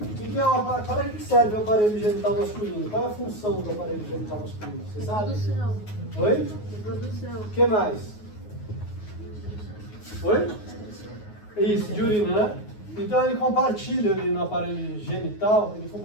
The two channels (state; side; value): late; right; 9.5 ms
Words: Para que serve o aparelho genital masculino? Qual é a função do aparelho genital masculino? Você sabe? Reprodução. Oi? Reprodução. O que mais? Oi? Isso, de urina, né? Então ele compartilha ali no aparelho genital, ele